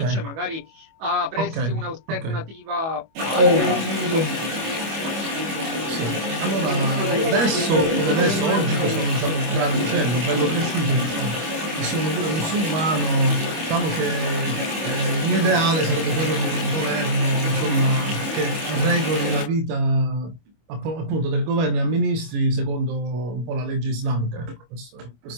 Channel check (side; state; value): left; late; 25 ms